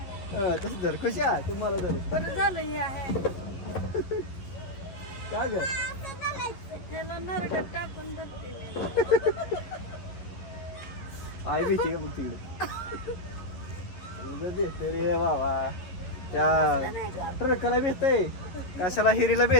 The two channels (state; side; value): late; right; 11 ms